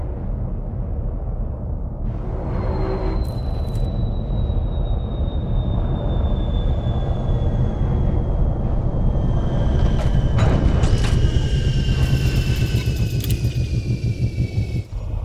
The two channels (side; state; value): both; identical; correlation 1.00